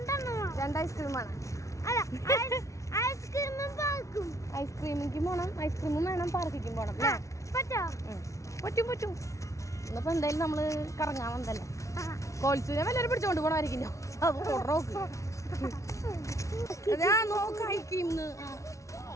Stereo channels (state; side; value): late; right; 0.15 ms